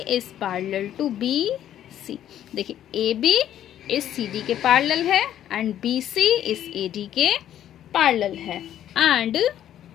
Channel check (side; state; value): right; quieter; 11.1 dB